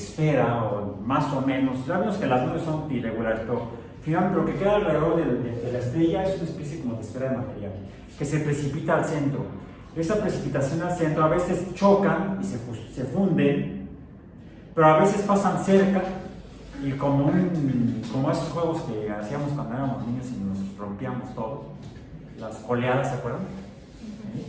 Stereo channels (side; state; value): both; identical; correlation 1.00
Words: o más o menos, ya vemos que las nubes son irregulares, pero finalmente lo que queda alrededor de la estrella es una especie como de esfera de material que se precipita al centro. Esa precipitación al centro a veces chocan y se funden, pero a veces pasan cerca y como esos juegos que hacíamos cuando éramos niños y nos rompíamos todo, las oleadas, ¿se acuerdan?